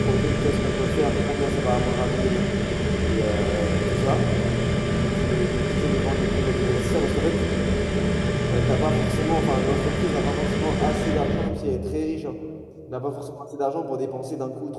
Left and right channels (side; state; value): both; identical; correlation 1.00